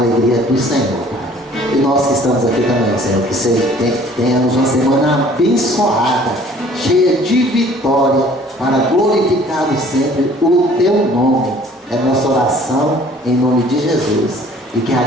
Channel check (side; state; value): both; normal; correlation 0.54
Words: do Senhor, Pai. E nós que estamos aqui também, Senhor, que tenhamos uma semana abençoada, cheia de vitória, para glorificarmos sempre o teu nome. É nossa oração em nome de Jesus. E que a